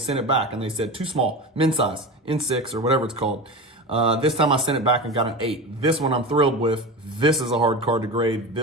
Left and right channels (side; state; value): both; normal; correlation 0.26